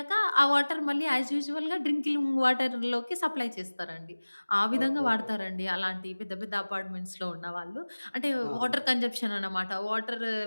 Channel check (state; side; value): inverted; both; correlation -1.00